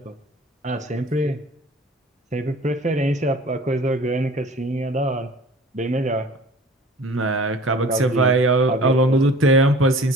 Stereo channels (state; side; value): normal; both; correlation 0.46